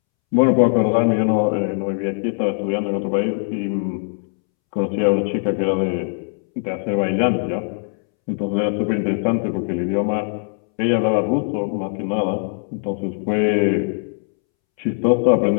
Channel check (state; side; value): silent; right; 65 dB below the other